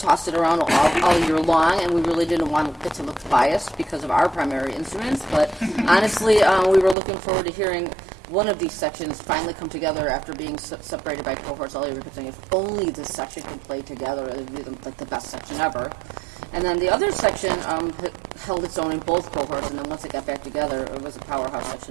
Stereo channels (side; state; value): left; drops out; at 7.0 s